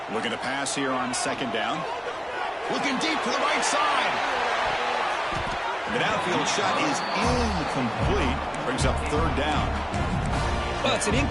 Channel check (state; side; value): identical; both; correlation 1.00